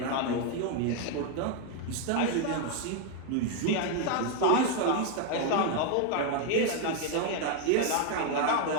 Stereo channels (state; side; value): different; both; correlation 0.01